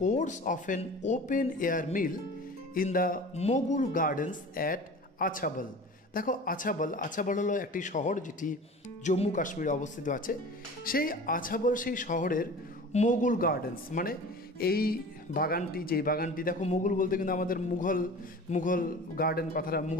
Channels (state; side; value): normal; both; correlation 0.39